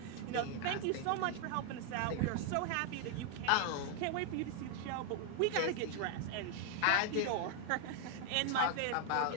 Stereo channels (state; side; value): different; both; correlation 0.00